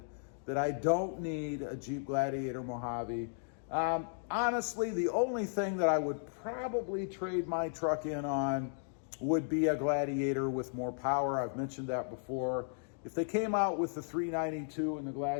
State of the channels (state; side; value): silent; right; digital silence